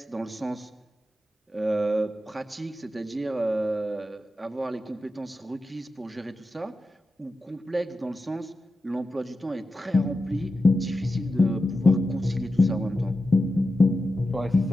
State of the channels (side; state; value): both; normal; correlation 0.91